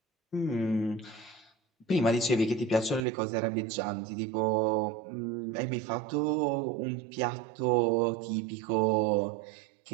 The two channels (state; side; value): drops out; left; at 3.1 s